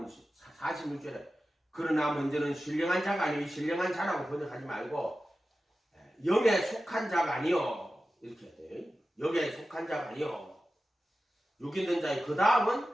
46절에 그러나 먼저는 신령한 자가 아니요 신령한 자라고 번역하지 말고 영에 속한 자가 아니요 이렇게 해야 돼요. 영에 속한 자가 아니요 육 있는 자의 그 다음은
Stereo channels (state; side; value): normal; both; correlation 0.94